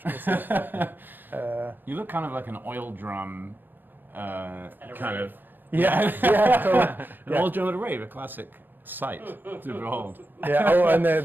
You look kind of like an oil drum, kind of. Yeah, totally. An oil drum at a rave, a classic sight to behold. Yeah. Oh, and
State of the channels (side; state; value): left; late; 0.093 ms